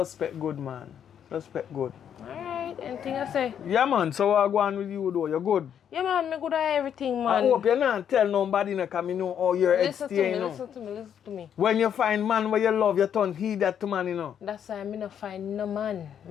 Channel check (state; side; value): quieter; right; 8.8 dB